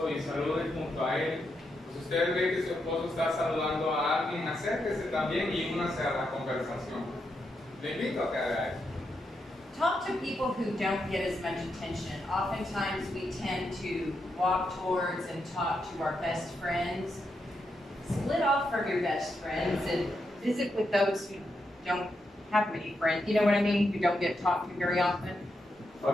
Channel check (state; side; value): normal; both; correlation 0.83